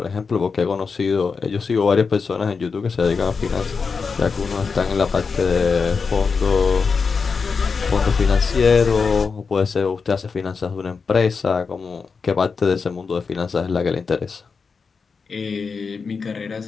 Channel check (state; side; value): quieter; right; 5.1 dB